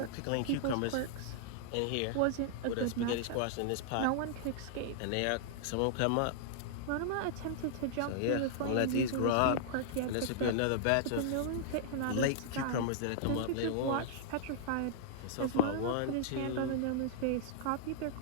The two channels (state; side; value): different; both; correlation -0.01